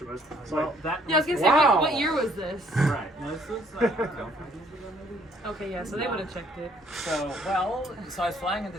was well, that Yeah, I was gonna say, Wow. what year was this? right. No, this was I don't know, 5 years ago maybe. Okay, yeah, so they would have checked it. So, so I was flying into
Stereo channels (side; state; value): both; normal; correlation 0.63